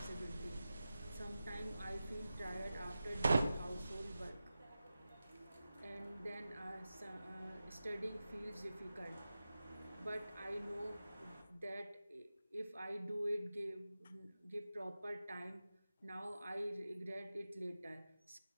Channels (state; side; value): inverted; both; correlation -0.94